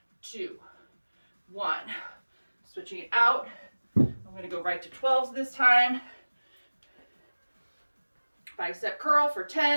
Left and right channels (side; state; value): both; inverted; correlation -1.00